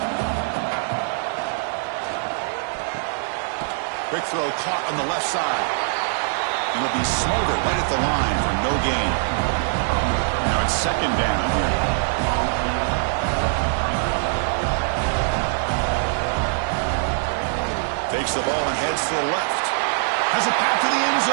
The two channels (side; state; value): left; silent; 63 dB below the other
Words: Quick throw caught on the left side. And it'll be smothered right at the line for no gain. Now it's second down here. Takes the ball and heads to the left. Has a path to the end